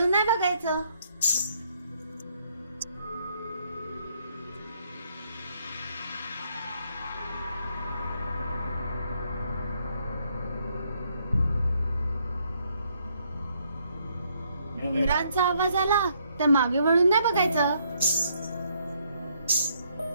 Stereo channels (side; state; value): both; inverted; correlation -0.71